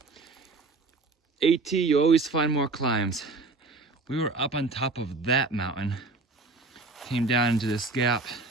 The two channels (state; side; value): quieter; left; 3.5 dB